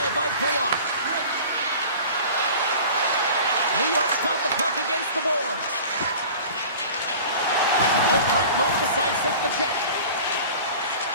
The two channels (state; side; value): inverted; both; correlation -0.40